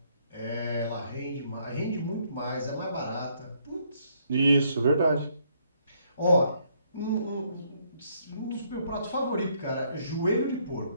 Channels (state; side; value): inverted; both; correlation -0.70